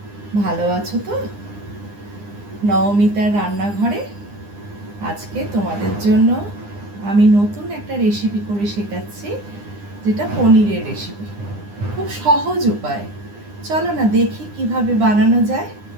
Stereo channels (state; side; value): late; left; 9.8 ms